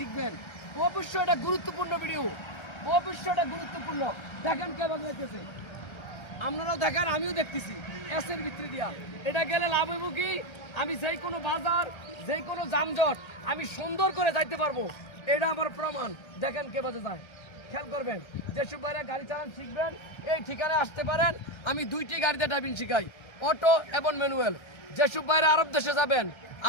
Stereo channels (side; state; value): right; late; 1.3 ms